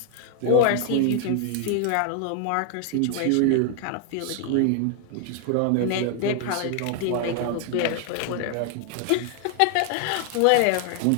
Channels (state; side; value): different; both; correlation 0.00